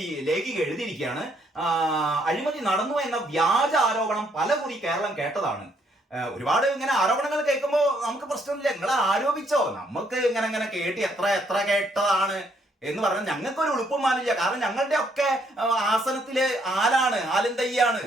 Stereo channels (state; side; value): normal; both; correlation 0.70